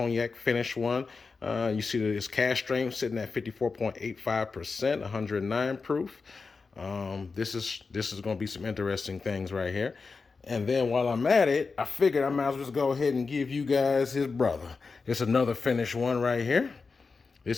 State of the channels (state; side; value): quieter; right; 4.5 dB